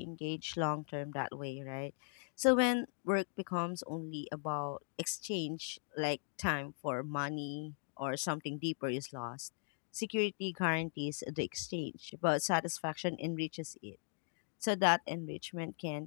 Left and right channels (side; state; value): right; silent; digital silence